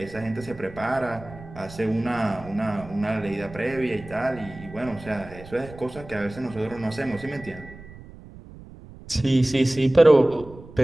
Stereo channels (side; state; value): right; noise; rumble, 17 dB below the sound